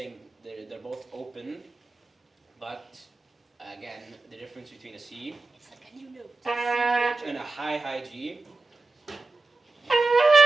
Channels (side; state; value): left; quieter; 3.5 dB